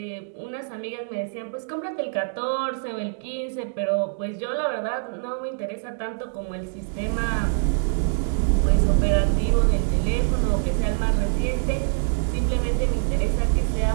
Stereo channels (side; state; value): left; silent; 62 dB below the other